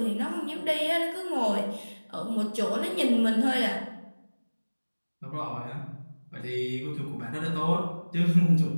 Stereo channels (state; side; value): inverted; both; correlation -1.00